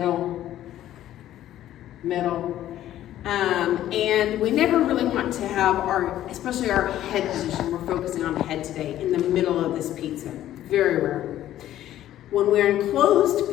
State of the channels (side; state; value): right; quieter; 12.7 dB